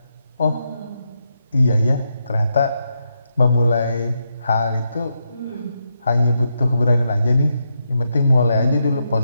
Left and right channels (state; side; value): inverted; both; correlation -0.83